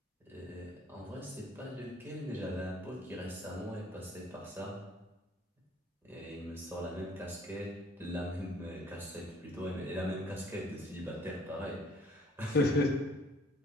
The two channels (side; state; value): both; normal; correlation 0.58